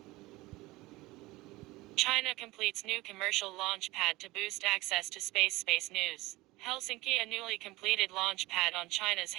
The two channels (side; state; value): left; quieter; 20.2 dB